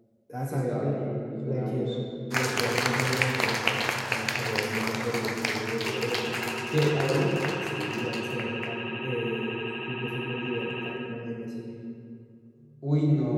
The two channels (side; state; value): both; identical; correlation 1.00